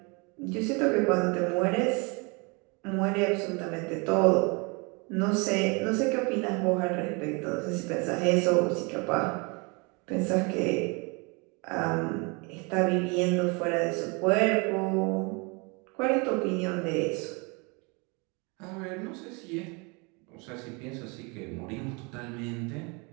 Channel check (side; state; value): left; quieter; 30.5 dB